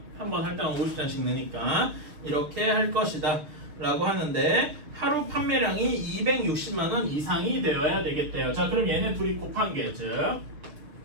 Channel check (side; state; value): left; late; 6.6 ms